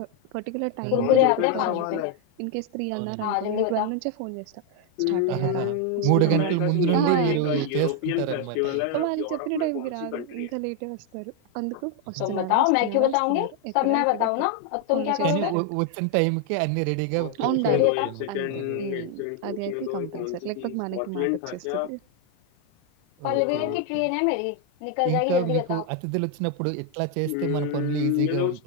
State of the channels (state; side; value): different; both; correlation 0.01